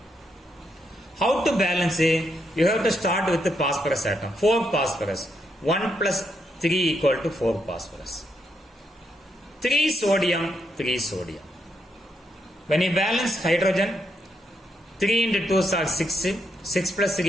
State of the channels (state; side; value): normal; both; correlation 0.79